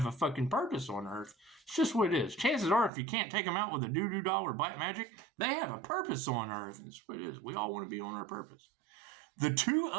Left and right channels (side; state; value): left; drops out; at 2.9 s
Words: a fucking purpose on Earth. It's just what it is. Chances are, if you can't take them out with a doo-doo doll or black magic, they have a purpose on Earth. It's what it is. We all want to be on our purpose. The Two